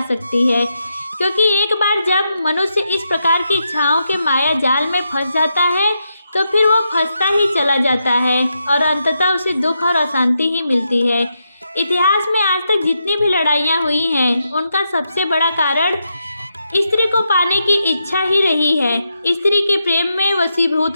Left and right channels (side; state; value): both; inverted; correlation -0.83